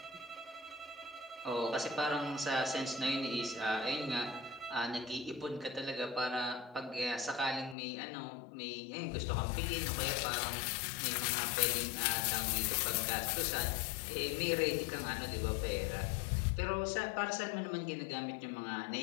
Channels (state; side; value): drops out; right; at 7.8 s